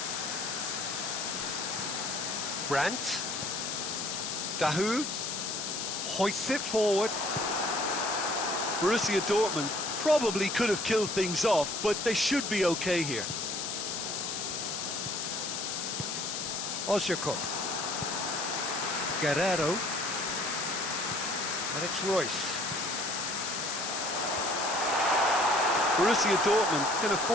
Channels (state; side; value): noise; left; hiss, 3 dB below the sound